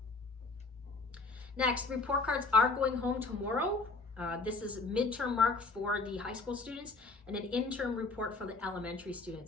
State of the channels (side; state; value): right; quieter; 3.7 dB